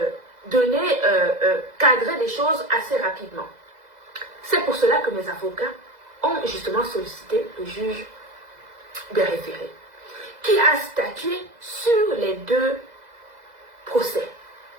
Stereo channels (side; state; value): left; late; 2.0 ms